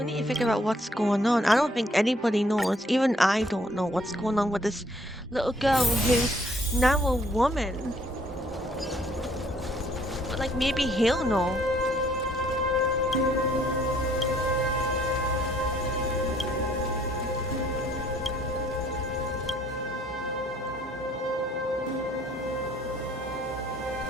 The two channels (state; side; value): normal; both; correlation 0.63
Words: need to figure out what's going on. I don't think anybody knows. Even I don't know what's going on with this little girl who's now a woman. But like maybe he'll know.